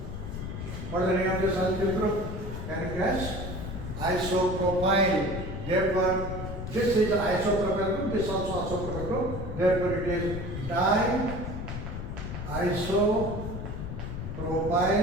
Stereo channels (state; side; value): noise; left; rumble, 6 dB below the sound